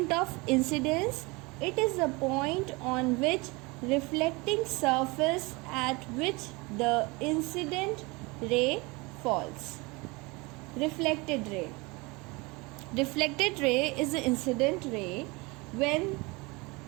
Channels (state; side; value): quieter; left; 25.6 dB